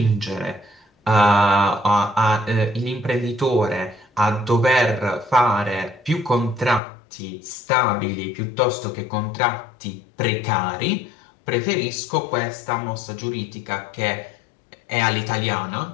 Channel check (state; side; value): drops out; right; at 6.8 s